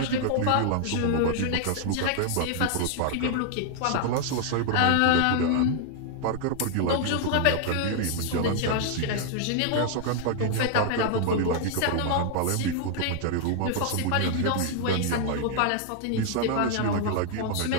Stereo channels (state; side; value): different; both; correlation 0.00